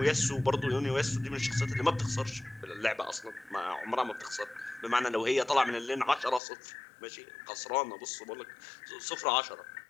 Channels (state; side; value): drops out; right; at 6.4 s